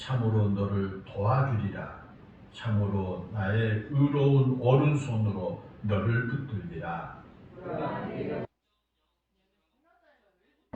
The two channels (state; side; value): identical; both; correlation 1.00